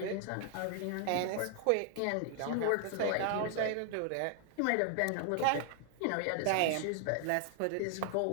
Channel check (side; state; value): both; different; correlation 0.00